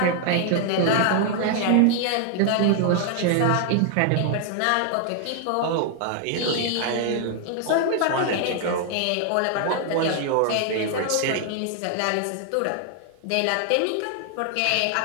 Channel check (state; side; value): different; both; correlation 0.00